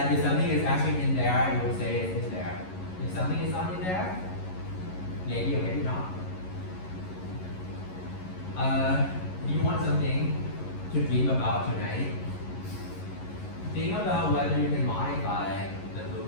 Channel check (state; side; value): late; right; 11 ms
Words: if something is actually in there, it will say it's in there. If something is not in there, maybe or maybe not. If you want something to dream about tonight, think about whether you can modify the